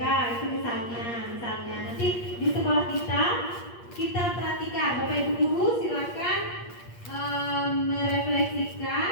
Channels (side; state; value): right; late; 8.5 ms